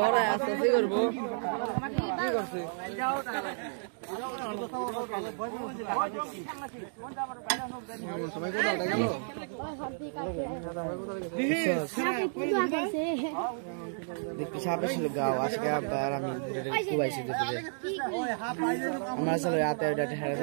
আছে কি করব কি করছে সবাই কোথায় গেল দেখতে সাপে ছিল গাও আজকে আবার আমি কুবাইছি দেখতে আমরা চলে রাতে ওটা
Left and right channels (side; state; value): left; silent; digital silence